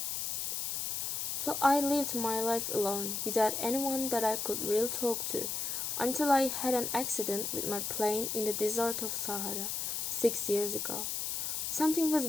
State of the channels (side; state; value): left; noise; hiss, 1 dB below the sound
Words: So I lived my life alone, without anyone that I could really talk to, until I had an accident with my plane in the desert of Sahara, 6 years ago. Something was